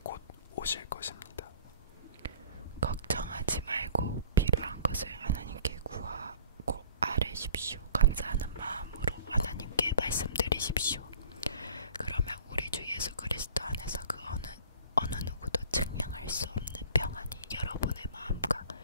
곧 오실 것입니다. 걱정하지 말고 필요한 것을 하나님께 구하고 아뢰십시오. 감사하는 마음으로 하나님께 말씀드리십시오. 그러면 우리 주 예수 그리스도 안에서 그 어느 누구도 측량할 수 없는 평안이 여러분의 마음과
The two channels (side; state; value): both; inverted; correlation -0.46